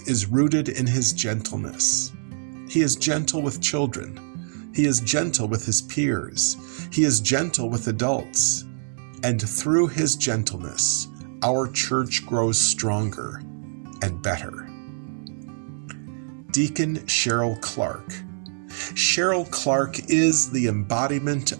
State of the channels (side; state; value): left; silent; digital silence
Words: is rooted in his gentleness. He is gentle with children. He is gentle with his peers. He is gentle with adults. And through his gentleness, our church grows stronger and better. Deacon Cheryl Clark. Cheryl Clark is the embodiment